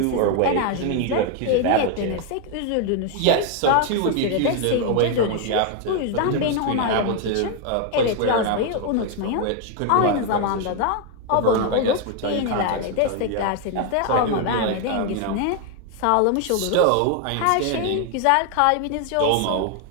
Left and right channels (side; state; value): both; different; correlation 0.01